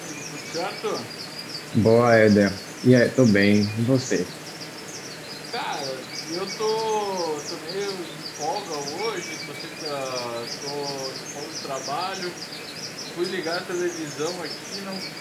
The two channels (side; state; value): both; identical; correlation 1.00